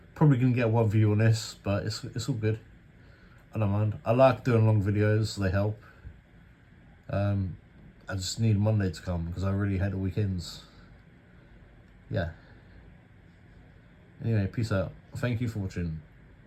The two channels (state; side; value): identical; both; correlation 1.00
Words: Probably gonna get one view on this, but it's all good. I don't mind. I like doing long videos. They help. I just need Monday to come because I really hate the weekends. Yeah. Anyway, peace out. Thank you for watching.